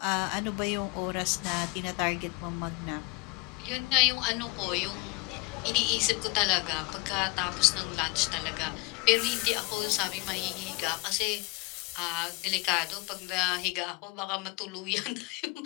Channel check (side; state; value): right; quieter; 26.8 dB